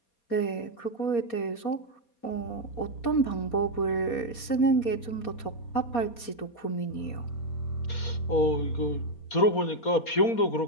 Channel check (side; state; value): right; late; 4.2 ms